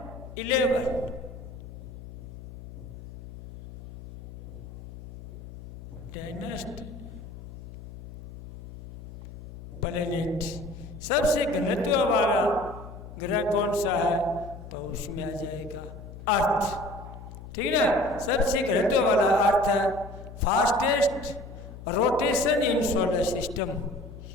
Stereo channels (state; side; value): noise; left; hum, 13 dB below the sound